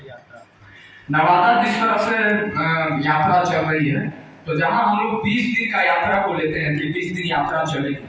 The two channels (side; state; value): both; identical; correlation 1.00